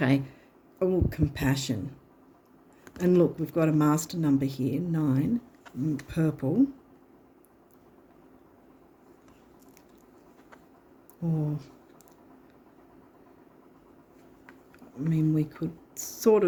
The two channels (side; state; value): both; identical; correlation 1.00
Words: Oh, compassion. And look, we've got a master number here, 9, purple. Or, I mean, we could sort